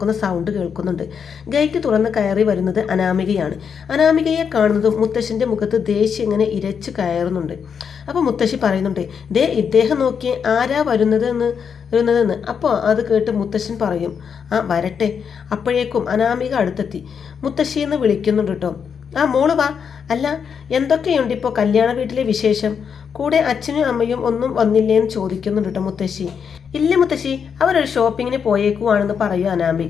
സൗണ്ട് കേൾക്കുന്നുണ്ട്. ഗേറ്റ് തുറന്ന് കയറി വരുന്നത് അനാമികയാണ്. അനാമികയെ കാണുന്നതും മുത്തശ്ശൻ്റെ മുഖത്ത് ദേഷ്യം ഇങ്ങനെ ഇരച്ചു കയറുന്നുണ്ട്. അപ്പോൾ മുത്തശ്ശി പറയുന്നുണ്ട്, ദേ ഇദ്ദേഹം നോക്കിയേ ആരാ വരുന്നതെന്ന്. അപ്പോൾ അത് കേട്ട് മുത്തശ്ശൻ പറയും, ആ വരട്ടെ. അപ്പോഴേക്കും അനാമിക അടുത്തെത്തി മുത്തശ്ശിയെന്ന് വിളിക്കുന്നുണ്ട് കേട്ടോ. ആ മോള് വാ. അല്ല, എന്തൊക്കെയുണ്ട് ഇപ്പോൾ കല്യാണ വീട്ടിലെ വിശേഷം? കൂടെ അച്ഛനും അമ്മയും ഒന്നും വന്നില്ലേന്ന് ചോദിക്കുന്നുണ്ട് കേട്ടോ മുത്തശ്ശി. ഇല്ല മുത്തശ്ശി, അവരൊരു ഷോപ്പിങ്ങിന് പോയേക്കുവാണെന്ന് പറയൂ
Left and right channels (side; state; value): right; quieter; 6.9 dB